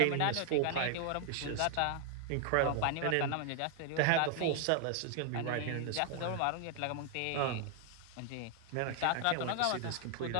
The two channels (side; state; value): both; different; correlation 0.00